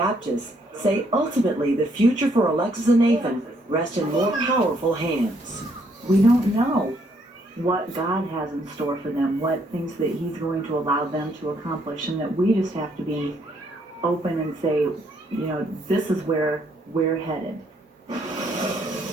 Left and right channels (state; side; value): normal; both; correlation 0.70